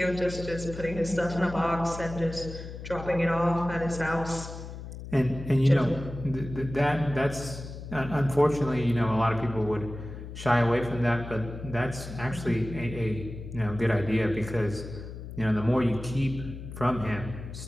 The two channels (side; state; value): left; noise; hum, 11 dB below the sound